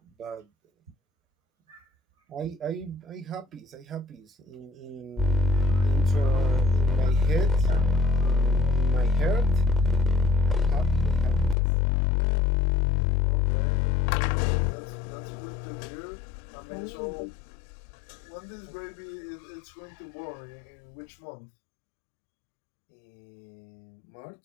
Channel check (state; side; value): drops out; right; at 11.6 s